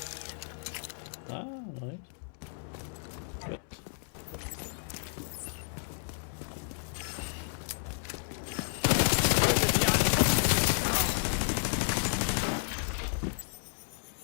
Ah, noch nicht. Gut.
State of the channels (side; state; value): right; silent; 56 dB below the other